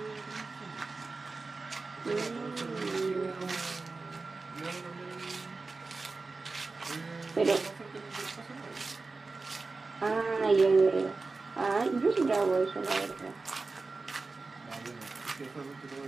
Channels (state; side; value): quieter; left; 3.9 dB